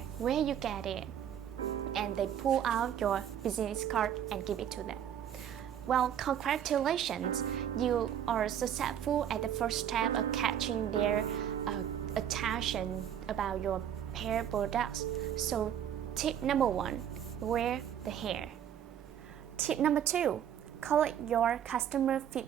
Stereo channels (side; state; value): left; quieter; 9.6 dB